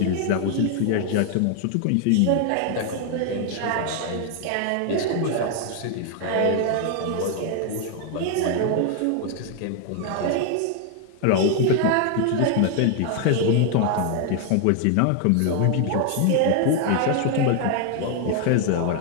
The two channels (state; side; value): different; both; correlation 0.00